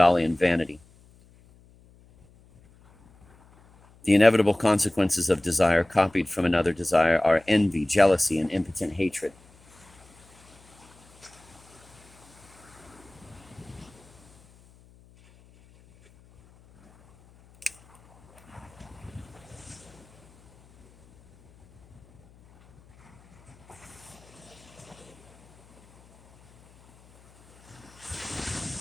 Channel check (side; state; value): left; noise; hum, 27 dB below the sound